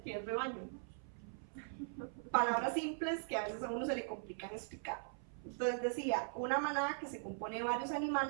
qué es rebaño? Palabras simples que a veces a uno se le complican explicar. Entonces decía, una manada que se compone de varios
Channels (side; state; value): left; silent; 51 dB below the other